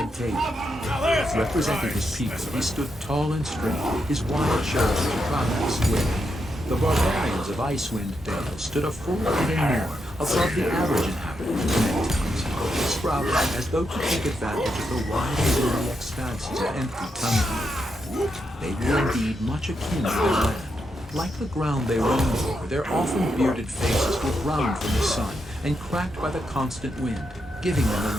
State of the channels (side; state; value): both; normal; correlation 0.83